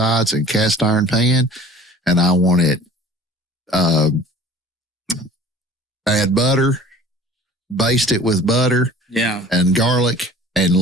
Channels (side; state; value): both; normal; correlation 0.46